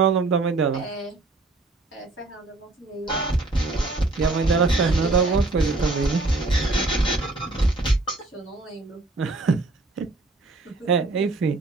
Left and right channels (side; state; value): left; quieter; 3.2 dB